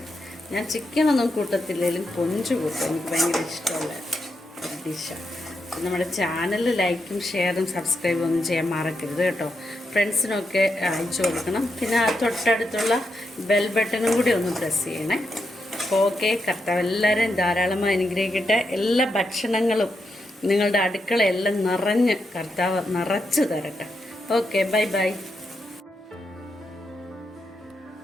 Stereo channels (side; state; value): both; normal; correlation 0.84